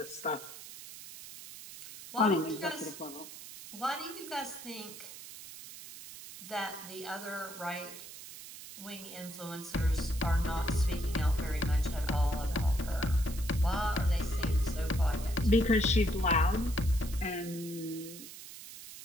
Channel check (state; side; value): noise; right; hiss, 14 dB below the sound